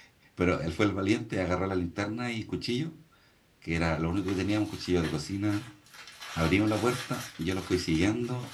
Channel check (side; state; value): both; identical; correlation 1.00